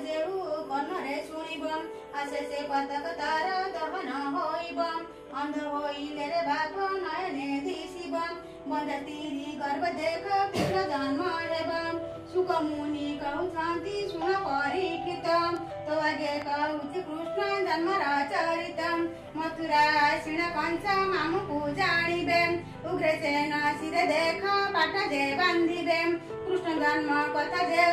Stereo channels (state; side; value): identical; both; correlation 1.00